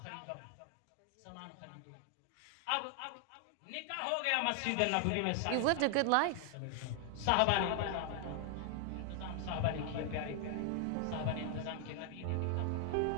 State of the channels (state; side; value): different; both; correlation 0.00